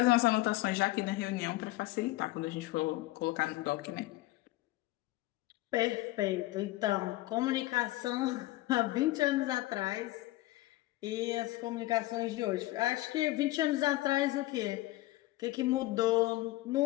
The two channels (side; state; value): right; quieter; 18.4 dB